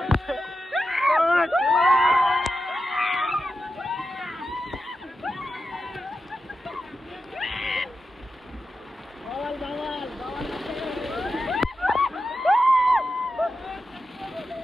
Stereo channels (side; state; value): both; normal; correlation 0.90